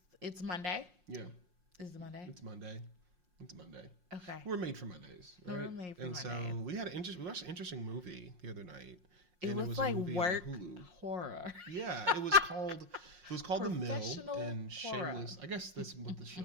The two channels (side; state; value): left; late; 5.6 ms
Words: It's Monday. Yeah, Is it Monday? it's Monday. It's Monday. Okay. We're made for Mondays, right? We're made for and Mondays. so we watched an interesting movie the other night. It And was a like movie on work Hulu. horror. Yeah, it was called The Mill Professional and horror. Shameless. I guess that's what the